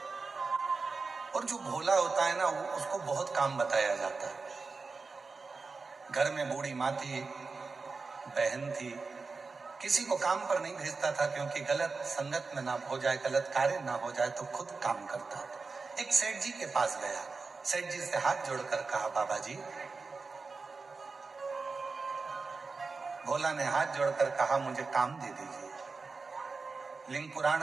और जो भोला होता है ना, उसको बहुत काम बताया जाता है। घर में बूढ़ी माँ थी, बहन थी, किसी को काम पर नहीं भेजता था क्योंकि गलत संगत में ना हो जाए, गलत कार्य ना हो जाए, तो खुद काम करता था। एक सेठ जी के पास गया, सेठ जी से हाथ जोड़कर कहा, बाबा जी। भोला ने हाथ जोड़कर कहा, मुझे काम दे दीजिए। लिंग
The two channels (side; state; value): left; quieter; 4.3 dB